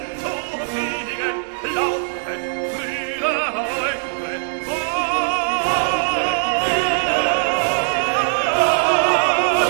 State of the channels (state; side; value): silent; left; digital silence